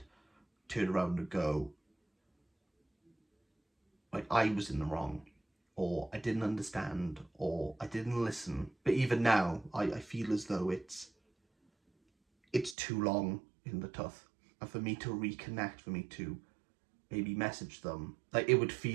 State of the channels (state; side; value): drops out; left; at 12.8 s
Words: turn around and go, like, I was in the wrong, or I didn't understand, or I didn't listen. But even now, I feel as though it's too long in the tooth. And for me to reconnect, for me to maybe message them, like, it would